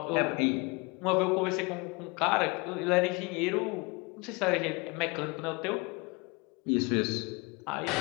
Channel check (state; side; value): quieter; right; 27.9 dB